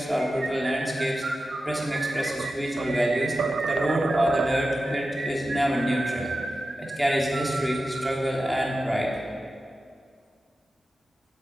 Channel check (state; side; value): normal; both; correlation 0.92